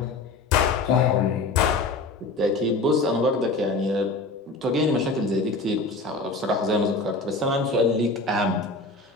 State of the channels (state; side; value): quieter; right; 3.4 dB